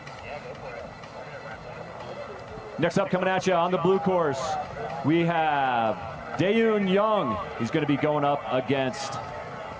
Next up, coming at you on the blue course, we have Daeun Young. He's going to be going up against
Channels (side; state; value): both; identical; correlation 1.00